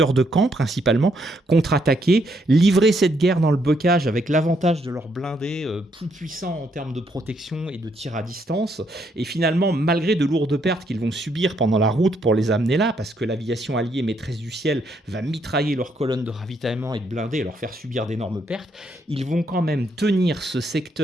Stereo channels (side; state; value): both; normal; correlation 0.74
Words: de Caen principalement, contre-attaquer, livrer cette guerre dans le bocage avec l'avantage de leurs blindés plus puissants en termes de protection et de tir à distance. Et finalement, malgré de lourdes pertes qu'ils vont subir pendant la route pour les amener là, parce que l'aviation alliée maîtresse du ciel va mitrailler leurs colonnes de ravitaillement et de blindés et leur faire subir d'énormes pertes, ils vont quand même tenir ce